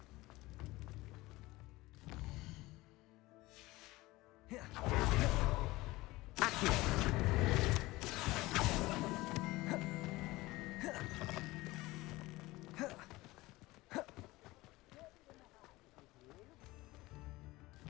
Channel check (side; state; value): right; quieter; 19.9 dB